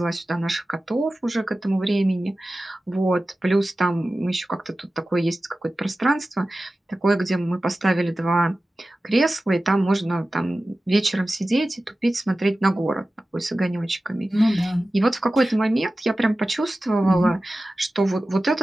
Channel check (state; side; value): normal; both; correlation 0.95